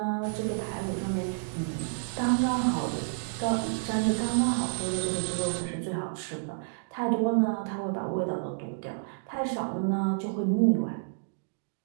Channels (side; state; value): left; silent; digital silence